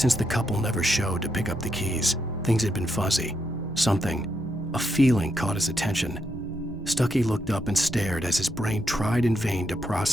the couple never showed to pick up the keys, things had been fuzzy. Something, a feeling caught his attention. Stucky looked up and stared as his brain tried in vain to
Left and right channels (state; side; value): normal; both; correlation 0.80